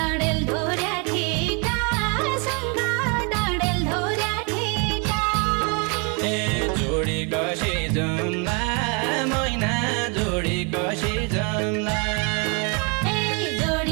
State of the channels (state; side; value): quieter; left; 34.0 dB